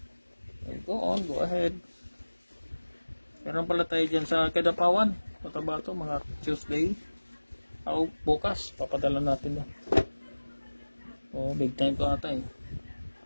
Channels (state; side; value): inverted; both; correlation -1.00